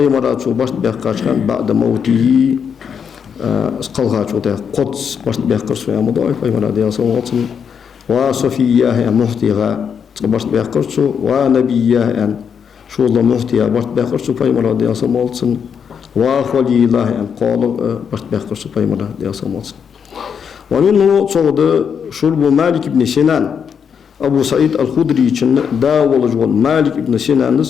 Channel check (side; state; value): right; quieter; 7.1 dB